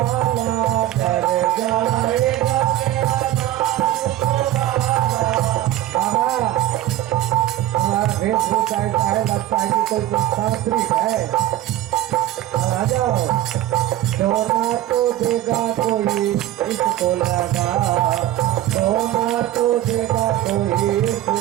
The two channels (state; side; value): quieter; left; 13.5 dB